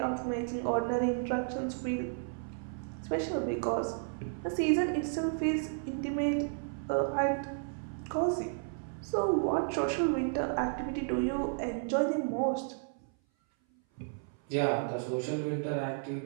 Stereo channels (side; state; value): left; silent; 56 dB below the other